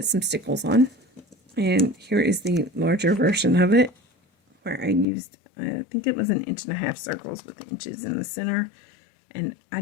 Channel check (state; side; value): drops out; right; at 5.1 s